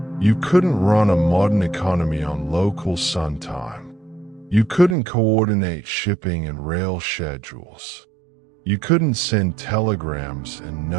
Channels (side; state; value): left; drops out; at 5.0 s